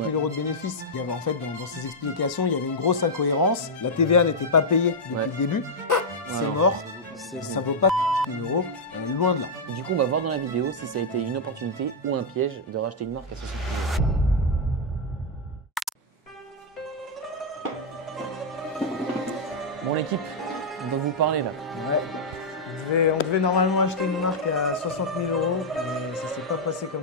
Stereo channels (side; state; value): both; normal; correlation -0.04